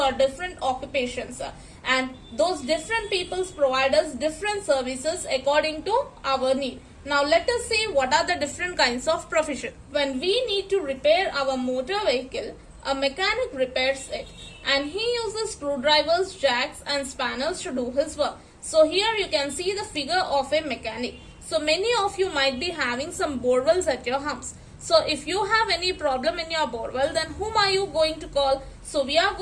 different occupations, and those different peoples provide us different services according to our need. Now let us see what are the different kinds of profession. When we need to repair our motor vehicle, a mechanic repairs it and he uses screwdrivers, jacks and spanners to do his work. So here you can see the figure of a mechanic. So many of you might be having some borewells at your house. So if you have any problem in your borewell, then whom are you going to call? So we are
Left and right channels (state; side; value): identical; both; correlation 1.00